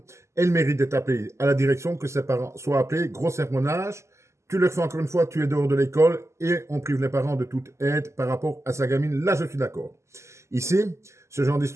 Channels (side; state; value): left; late; 0.13 ms